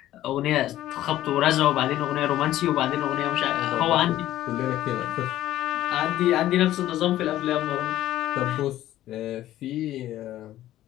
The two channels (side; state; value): right; quieter; 13.8 dB